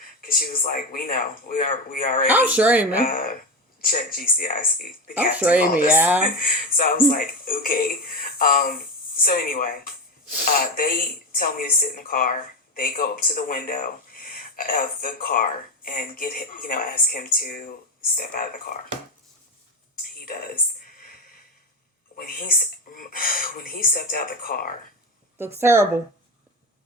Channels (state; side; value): normal; both; correlation 0.16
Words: because she was like, we know. We already. I'm sure, man. Check GCIC. I'm sure, yeah. So I was like, okay. So anyway, they tell me to sit in the car. They go up to the window of the car and get him, you know, ask him to step out of the car. He does. when he stepped out the car, Looks terrible.